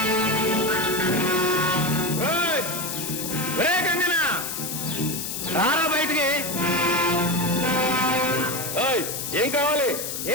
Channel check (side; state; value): left; noise; hiss, 5 dB below the sound